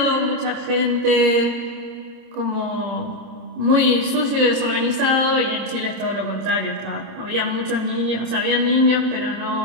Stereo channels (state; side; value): late; left; 27 ms